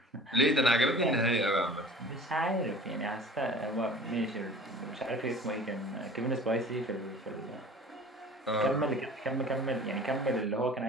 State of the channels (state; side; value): normal; both; correlation 0.44